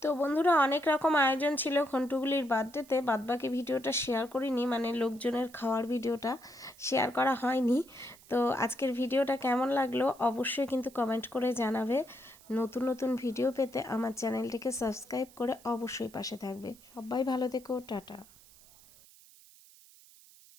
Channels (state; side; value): noise; right; hiss, 24 dB below the sound